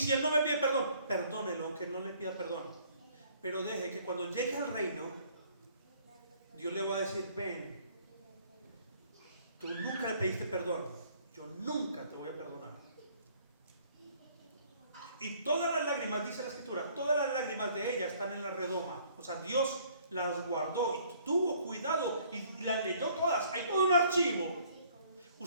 él no me pide perdón, perdónelo, aunque no le pida perdón. Pero deje que cuando llegue al reino, Dios le va a decir, ven, tú nunca le pediste perdón, yo nunca te voy a perdonar. Y todas las lágrimas, dice la escritura, todas las lágrimas de ella están en la redoma. O sea, Dios las guardó y tuvo cuidado y las leyó todas. Hay todo un archivo.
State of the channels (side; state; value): both; inverted; correlation -0.59